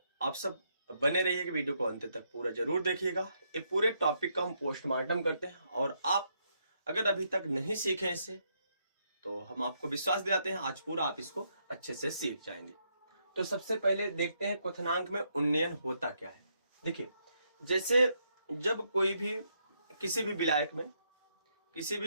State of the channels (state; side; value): inverted; both; correlation -0.76